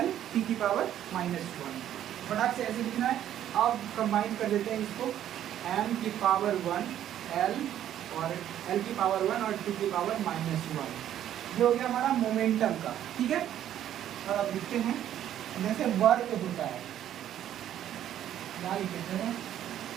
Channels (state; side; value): quieter; left; 11.2 dB